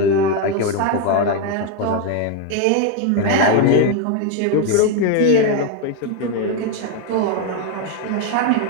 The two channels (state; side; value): different; both; correlation 0.01